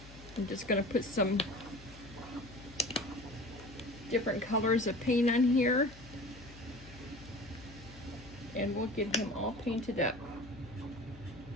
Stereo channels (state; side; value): noise; left; hum, 18 dB below the sound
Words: I'm just going to put some different colors of paint on here, and we'll get him all painted up.